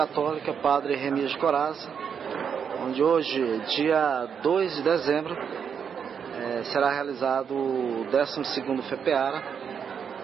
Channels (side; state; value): left; quieter; 7.2 dB